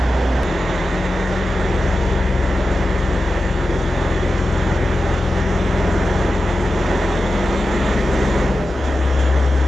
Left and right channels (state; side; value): normal; both; correlation 0.92